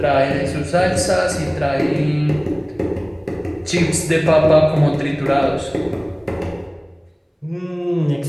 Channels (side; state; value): both; identical; correlation 1.00